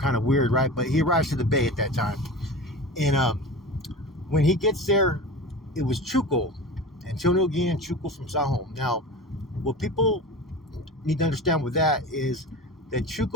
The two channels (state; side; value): normal; both; correlation 0.33